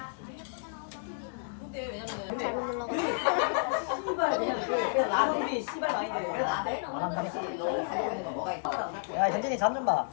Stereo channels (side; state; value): right; silent; digital silence